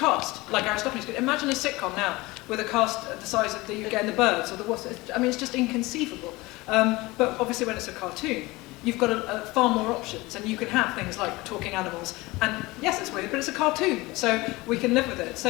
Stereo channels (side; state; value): right; quieter; 21.5 dB